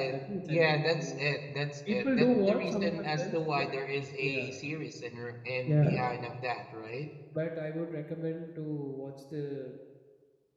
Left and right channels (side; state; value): both; identical; correlation 1.00